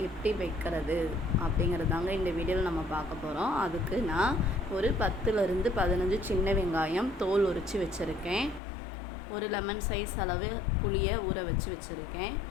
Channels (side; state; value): right; drops out; at 8.6 s